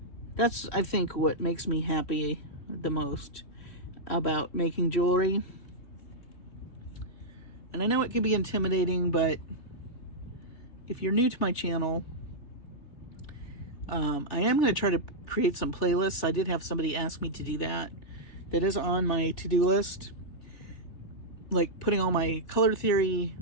I think what makes me happy the most about making jewelry. And I know it can be intimidating, but if you're new to my channel, I am going to try to create some playlists. I did have somebody ask me to do that. That is on my to-do list. Like putting all my color theory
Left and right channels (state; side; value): late; right; 3.2 ms